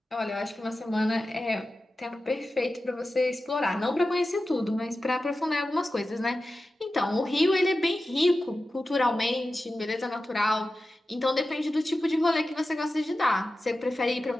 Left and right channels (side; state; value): both; normal; correlation 0.94